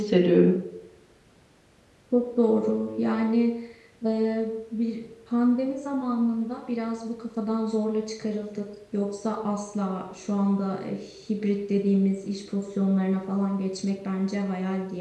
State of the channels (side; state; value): both; identical; correlation 1.00